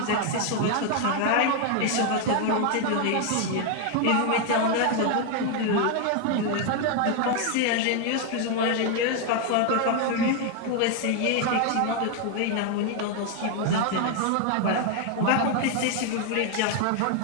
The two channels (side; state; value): both; different; correlation 0.01